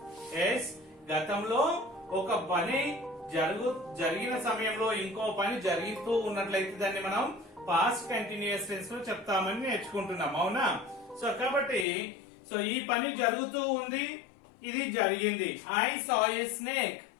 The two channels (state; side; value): drops out; right; at 11.9 s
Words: Yes, గతంలో ఒక పని జరిగిన సమయంలో ఇంకో పని జరుగుతూ ఉన్నట్లయితే దాన్ని మనం పాస్ట్ కంటిన్యూస్ టెన్స్ లో చెప్తామని నేర్చుకుంటున్నాం, అవునా? సో కాబట్టి సో ఈ పని జరుగుతూ ఉంది, ఇది జరిగింది. I saw a snake.